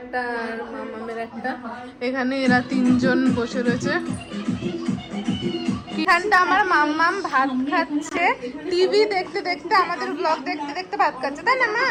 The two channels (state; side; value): identical; both; correlation 1.00